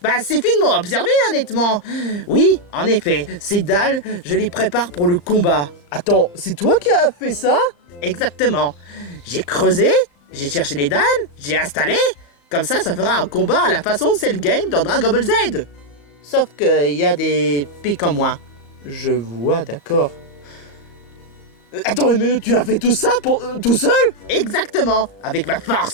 C'est finement observé, honnêtement. Oui, en effet, ces dalles, je les prépare pour le combat. Attends, c'est toi qui as fait ça? Exactement. J'ai creusé, j'ai cherché les dalles, j'ai installé. Comme ça fera un combat à la façon Cell Game dans Dragon Ball Z. Sauf qu'il y a des pics en moins. Je vois, d'accord. Attends une minute, tu as fait tout ça tout seul? Exactement, avec ma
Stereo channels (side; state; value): right; late; 35 ms